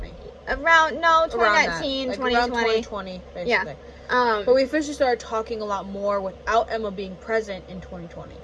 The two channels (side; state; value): both; identical; correlation 1.00